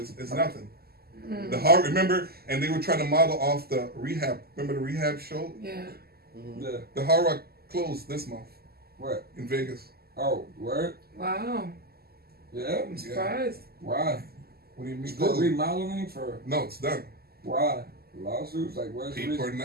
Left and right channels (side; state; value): left; late; 0.45 ms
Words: it's nothing. The horror, remember, and they were trying to model off the rehab. Remember the rehab show? Yeah. Yeah. The Hard Rock closed this month What? in Vegas. Oh, word? Wow. Yeah. I'm surprised. Why? What do you mean? Still remodeling for No, it's done. why? Lawsuits? Like where's the People are reason?